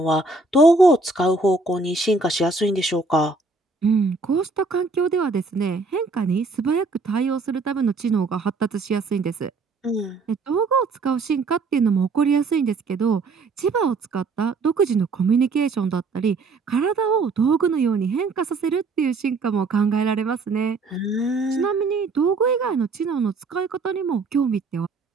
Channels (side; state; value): left; quieter; 3.8 dB